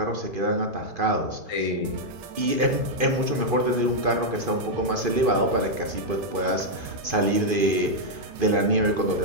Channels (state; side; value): late; left; 2.5 ms